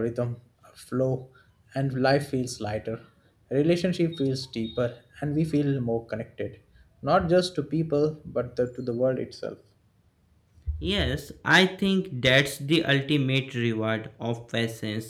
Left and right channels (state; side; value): identical; both; correlation 1.00